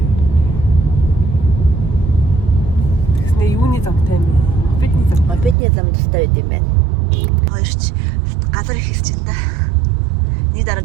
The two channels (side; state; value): left; drops out; at 5.6 s